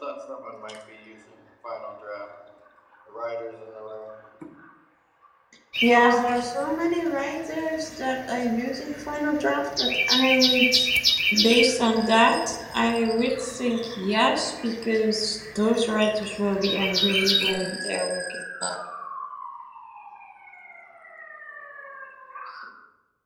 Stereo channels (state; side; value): identical; both; correlation 1.00